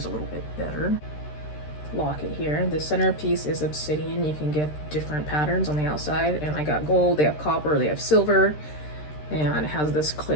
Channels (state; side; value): late; right; 13 ms